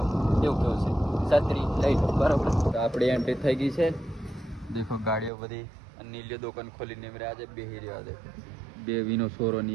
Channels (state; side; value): drops out; left; at 5.3 s